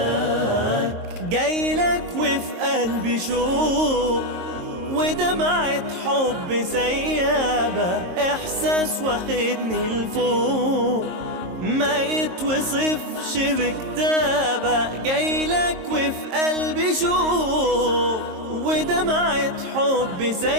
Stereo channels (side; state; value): left; late; 22 ms